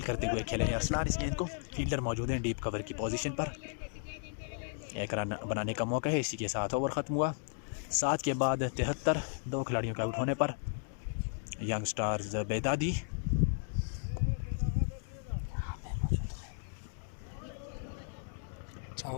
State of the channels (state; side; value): silent; right; digital silence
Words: करते हुए खेले हैं अरसलान इस गेंद को। फील्डर मौजूद हैं डीप कवर की पोजीशन पर। 1 रन बनाने का मौका है। इसी के साथ ओवर ख़त्म हुआ। 7 के बाद 73। 2 खिलाड़ियों के आउट होने पर यंग स्टार्स बेदादी